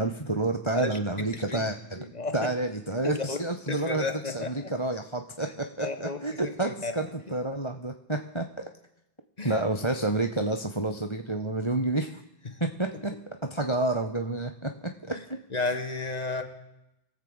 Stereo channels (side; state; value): right; late; 1.3 ms